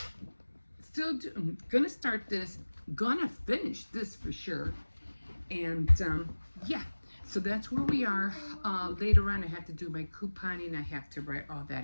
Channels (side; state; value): both; inverted; correlation -1.00